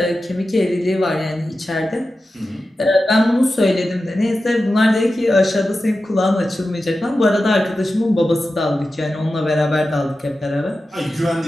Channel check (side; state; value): both; normal; correlation 0.93